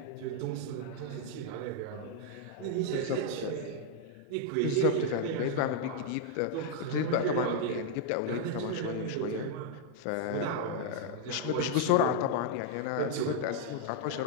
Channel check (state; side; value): different; both; correlation 0.00